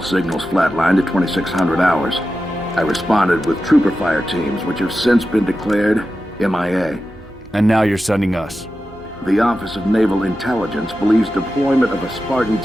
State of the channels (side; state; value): both; normal; correlation 0.92